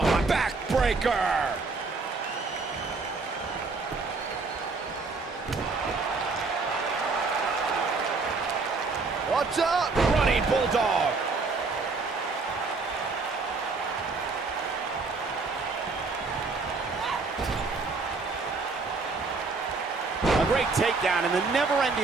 my backbreaker! Watch out! Running bulldog! A great takedown in the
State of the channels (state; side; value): quieter; left; 4.1 dB